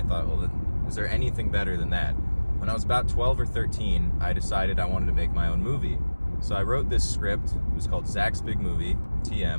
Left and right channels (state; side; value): inverted; both; correlation -1.00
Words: thought, well, is there anything better than that? When I was about 12 or 13, I decided I wanted to make my own movie. So I wrote this script. It was called Zach's Big Movie,